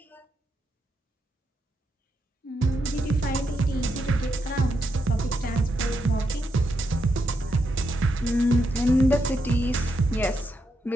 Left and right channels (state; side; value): normal; both; correlation 0.82